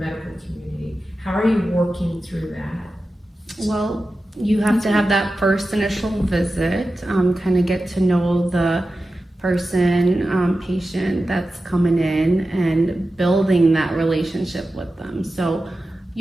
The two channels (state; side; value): normal; both; correlation 0.93